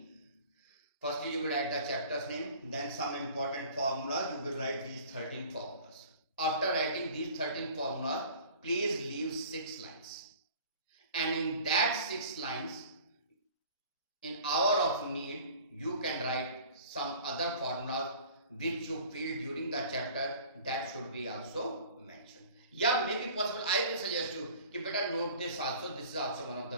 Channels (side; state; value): both; inverted; correlation -0.46